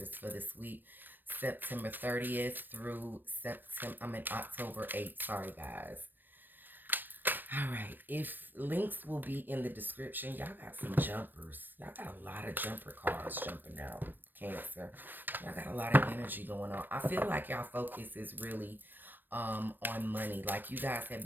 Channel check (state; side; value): late; left; 0.092 ms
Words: for this week. September 30th through October 8th. Sorry, guys. All right. If links will be in the description, y'all got some jumpers. Y'all got a lot of jumper cards jumping out. Cancer. Y'all got a lot of energy going on. I feel like y'all focus is really on money. Like you guys have